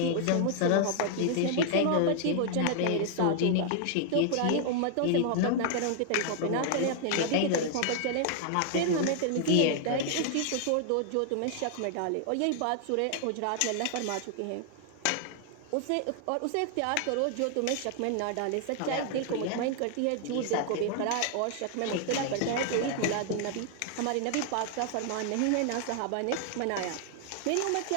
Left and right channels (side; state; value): both; different; correlation 0.00